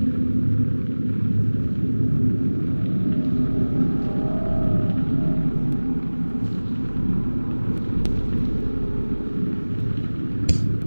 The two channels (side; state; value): both; inverted; correlation -1.00